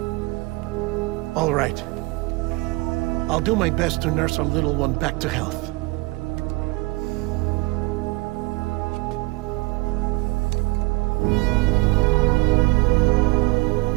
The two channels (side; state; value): left; quieter; 23.7 dB